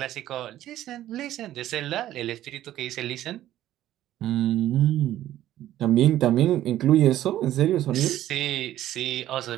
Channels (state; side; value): quieter; left; 13.2 dB